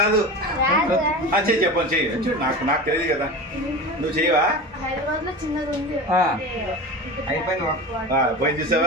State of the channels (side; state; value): both; normal; correlation 0.29